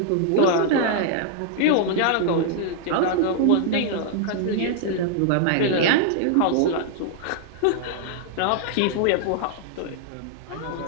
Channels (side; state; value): both; different; correlation -0.01